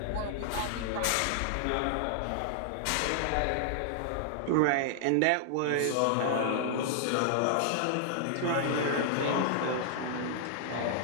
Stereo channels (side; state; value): both; different; correlation -0.01